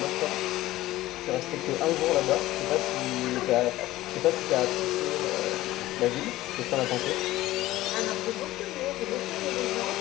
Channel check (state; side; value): quieter; right; 16.4 dB